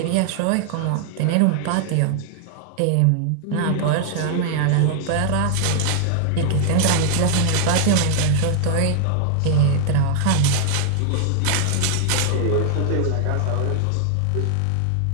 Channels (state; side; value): different; both; correlation 0.00